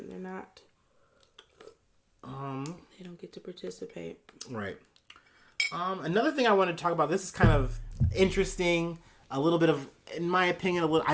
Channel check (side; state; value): both; identical; correlation 1.00